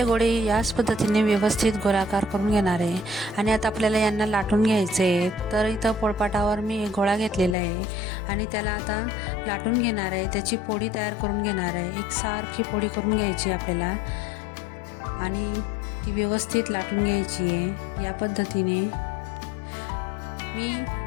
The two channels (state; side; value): drops out; right; at 7.6 s